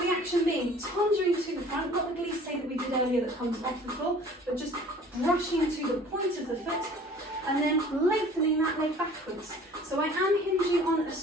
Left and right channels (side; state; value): both; normal; correlation 0.49